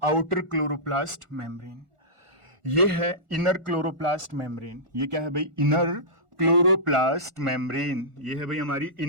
आउटर क्लोरोप्लास्ट मेम्ब्रेन। ये है इनर क्लोरोप्लास्ट मेम्ब्रेन। ये क्या है भाई? Inner chloroplast membrane. ये है भाई हमारी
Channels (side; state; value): left; late; 1.4 ms